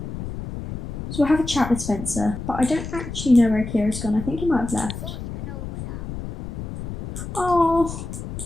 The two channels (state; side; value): noise; left; rumble, 8 dB below the sound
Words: So we'll have a chat with Spencer, but I don't actually know where Akira's gone. I think he might have left. Oh,